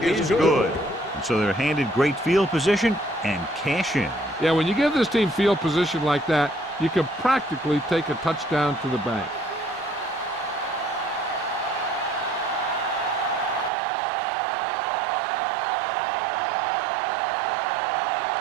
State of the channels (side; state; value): left; drops out; at 13.7 s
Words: is good. And so they're handed great field position and cash in. Yeah, when you give this team field position like that, you can practically take a touchdown to the bank.